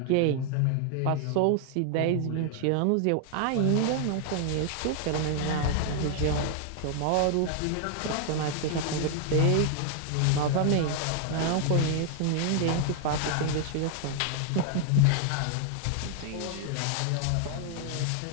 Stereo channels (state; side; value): different; both; correlation 0.00